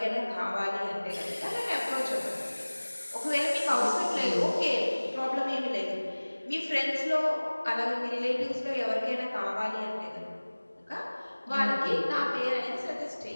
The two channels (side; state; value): both; inverted; correlation -1.00